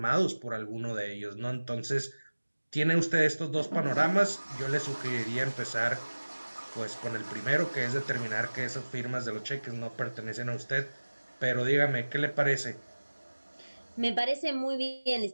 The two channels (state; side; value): inverted; both; correlation -1.00